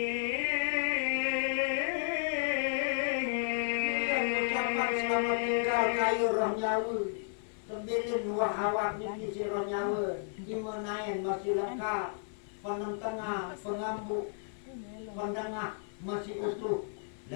Selamat tinggal kayu roh nyawa. Tembilin dua awak niki sira nyawa, dimanain masih lengkap, penentengah, pengambu, pendengah masih utuh.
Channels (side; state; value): right; silent; 56 dB below the other